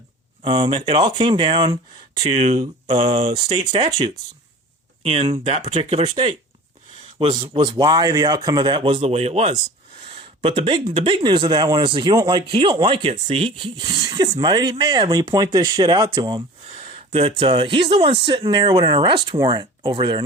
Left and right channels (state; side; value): normal; both; correlation 0.40